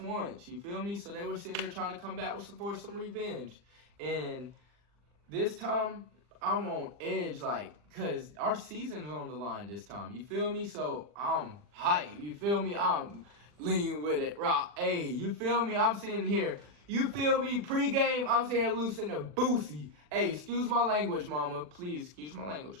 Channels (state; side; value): late; left; 40 ms